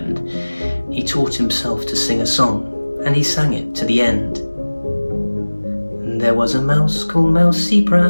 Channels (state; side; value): inverted; both; correlation -1.00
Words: he taught himself to sing a song, and he sang it to the end. And there was a mouse called Mousy